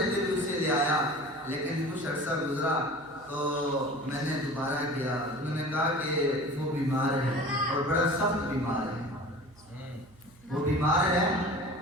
بھی اسے لے آیا، لیکن کچھ عرصہ گزرا تو میں نے دوبارہ کیا، انہوں نے کہا کہ وہ بیمار ہے اور بڑا سخت بیمار ہے، وہ بیمار ہے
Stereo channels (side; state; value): right; noise; hum, 27 dB below the sound